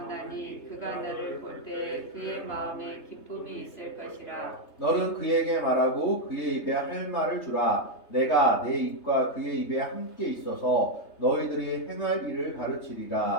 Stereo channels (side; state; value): right; late; 3.3 ms